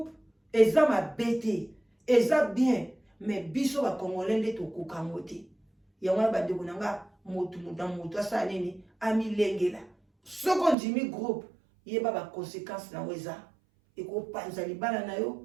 eza ma bête eza bien mais biso ba congolais nde to kokangote. Yango ba ndeko nanga motu asa nini amilengela. Soko njimi groupe yeba ba conséquences na weza eko panza libala na yo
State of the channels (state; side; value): drops out; left; at 10.8 s